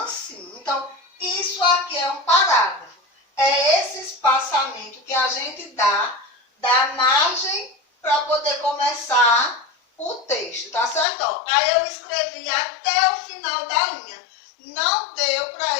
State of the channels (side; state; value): right; drops out; at 11.1 s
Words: Então, isso aqui é um parágrafo. É esse espaçamento que a gente dá da margem para poder começar o texto, tá certo? Ó, aí eu escrevi até o final da linha. Não deu para